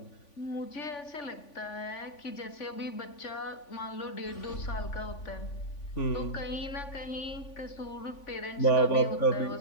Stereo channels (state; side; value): late; right; 3.5 ms